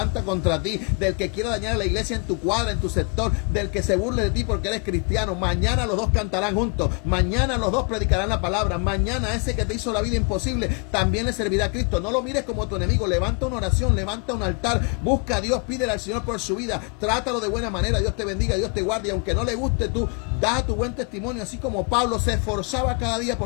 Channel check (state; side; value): quieter; right; 36.6 dB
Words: contra ti, del que quiera dañar a la iglesia en tu cuadra, en tu sector, del que se burle de ti porque eres cristiano. Mañana los dos cantarán juntos, mañana los dos predicarán la palabra, mañana ese que te hizo la vida imposible también le servirá a Cristo. No lo mires como tu enemigo. Levanta una oración, levanta un altar, busca a Dios, pídele al Señor por su vida, trátalo de buena manera. Dios te bendiga, Dios te guarde, y aunque no le guste, tú da tu buen testimonio, así como Pablo se esforzaba cada día